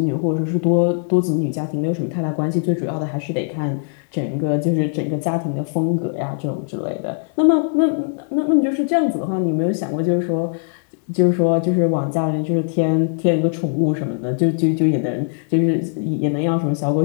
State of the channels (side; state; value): right; silent; digital silence